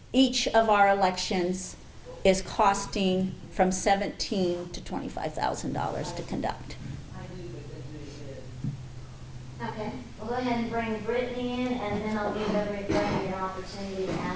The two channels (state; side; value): identical; both; correlation 1.00